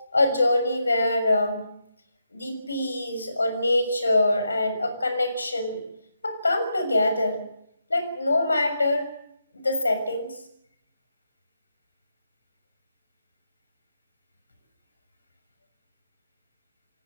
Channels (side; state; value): both; inverted; correlation -0.83